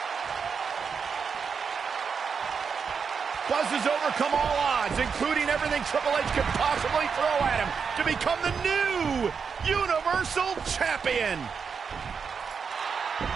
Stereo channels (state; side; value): quieter; left; 6.0 dB